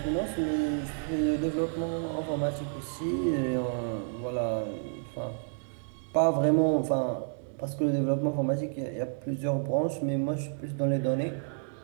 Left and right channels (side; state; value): left; silent; 58 dB below the other